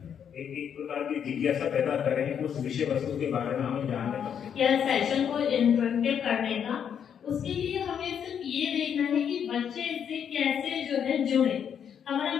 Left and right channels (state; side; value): quieter; right; 8.2 dB